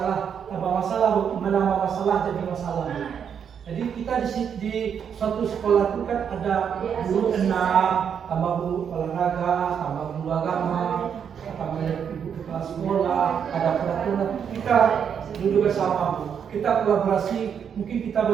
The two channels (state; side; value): quieter; left; 7.7 dB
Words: tambah masalah Bu, menambah masalah jadi masalah Bu. Jadi kita di suatu sekolah itu kan ada guru 6, tambah guru olahraga, tambah guru agama, tambah ibu kepala sekolah, ada peraturan. Kita duduk bersama Bu. kita kolaborasi, mungkin kita